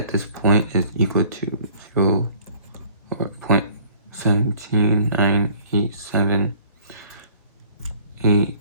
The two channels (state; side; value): inverted; both; correlation -0.54